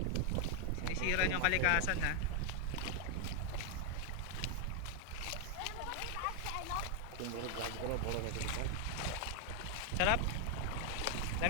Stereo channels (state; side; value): different; both; correlation 0.01